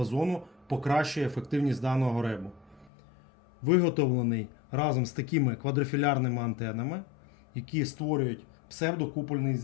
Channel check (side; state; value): right; drops out; at 2.9 s